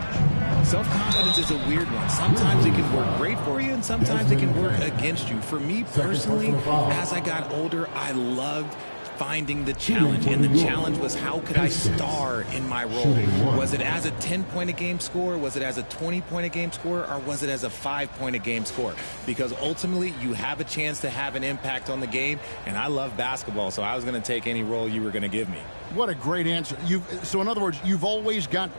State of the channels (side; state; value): both; inverted; correlation -1.00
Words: Self-confidence is a weird one. Sometimes it can work great for you, and sometimes it can work against you. For me personally, as I got older, I loved finding the challenge, and the challenge was how could I star in my role? Was it as a 10-point-a-game scorer? Was it as a 20-point-a-game scorer? Or was it as a 5-point-a-game scorer? Because ultimately, you have a chance to have an impact on the game, and I love basketball, so I was going to take any role you were going to give me. What a great answer. So in other words, you've always got